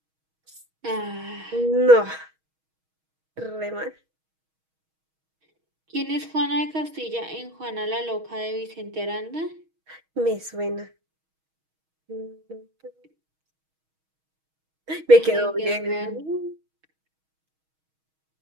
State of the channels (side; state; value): left; late; 6.3 ms